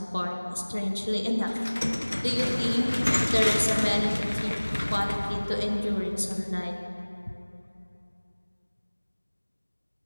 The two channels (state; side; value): inverted; both; correlation -1.00